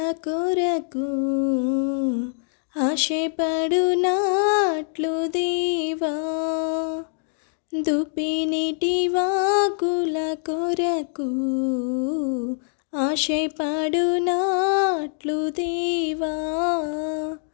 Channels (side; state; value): right; silent; digital silence